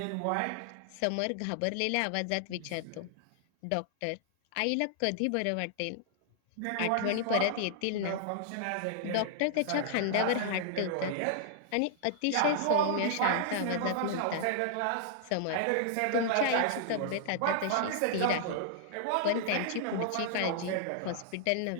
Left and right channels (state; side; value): different; both; correlation -0.01